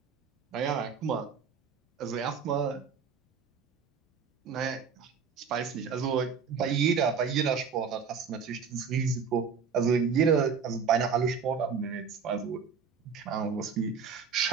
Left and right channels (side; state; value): left; quieter; 6.1 dB